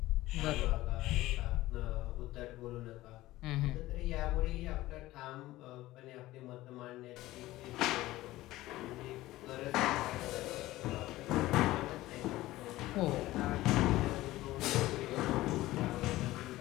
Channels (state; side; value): quieter; right; 17.0 dB